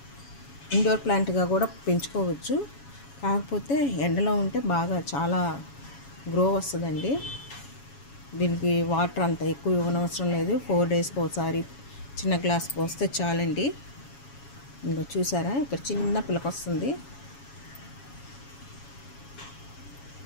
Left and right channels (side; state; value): right; late; 7.2 ms